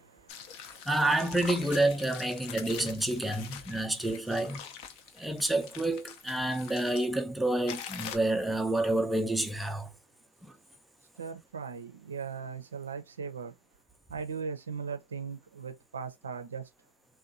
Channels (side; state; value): both; normal; correlation 0.77